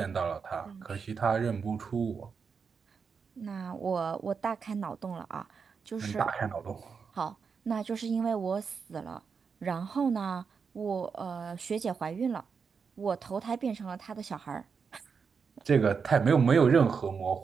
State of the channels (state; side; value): quieter; left; 5.8 dB